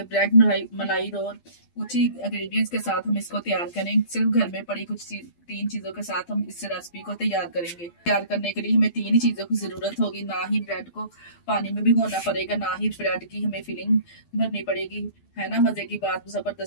ब्रेड मलाई रोल। कुछ ही इंग्रेडिएंट्स के साथ हम इसको तैयार करेंगे। सिर्फ घर में पड़ी तीन चीजों के साथ हम इस रेसिपी को तैयार करेंगे। तैयार करने के लिए हमें तीन ही चीजों की जरूरत होगी। ना ही ब्रेड को पानी में भिगोना पड़ेगा, ना ही ब्रेड की हमें फिलिंग भरनी पड़ेगी। है ना मजे की बात,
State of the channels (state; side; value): late; right; 12 ms